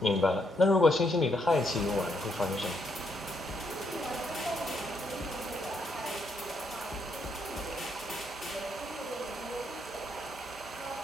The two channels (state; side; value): normal; both; correlation 0.76